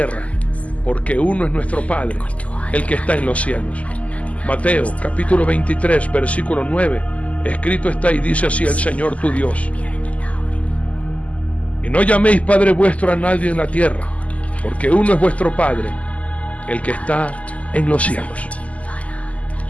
porque uno es nuestro Padre, el que está en los cielos. Mateo capítulo 23, versículo 9, escrito está y dice así el Señor tu Dios. Y no llaméis Padre vuestro a nadie en la tierra, porque uno es vuestro Padre, el que está en los cielos.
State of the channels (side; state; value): right; late; 0.068 ms